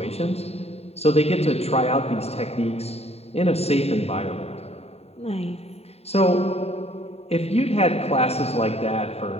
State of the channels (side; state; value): right; late; 0.30 ms